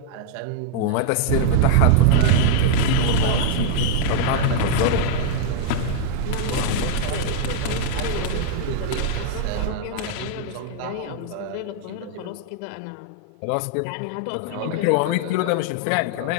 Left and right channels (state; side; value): different; both; correlation -0.01